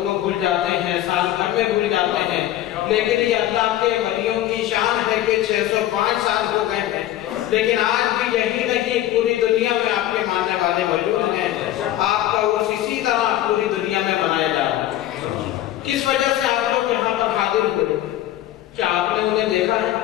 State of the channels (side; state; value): right; quieter; 13.4 dB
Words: کو بھول جاتے ہیں، سال بھر میں بھول جاتے ہیں، لیکن یہ اللہ کے ولیوں کی شان ہے کہ 605 سال ہو گئے ہیں، لیکن آج بھی یہی نہیں، پوری دنیا میں آپ کے ماننے والے موجود ہیں. آپ کا عرس اسی طرح پوری دنیا میں منایا جا رہا ہے. کس وجہ سے آپ لوگ یہاں پر حاضر ہوئے؟ کیا آپ نے انہیں دیکھا ہے؟